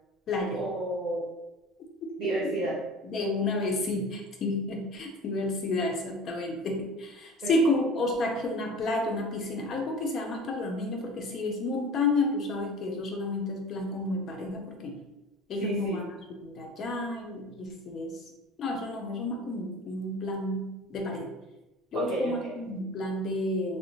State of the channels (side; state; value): both; normal; correlation 0.39